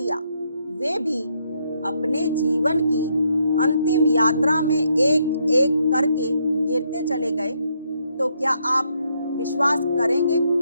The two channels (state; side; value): inverted; both; correlation -0.75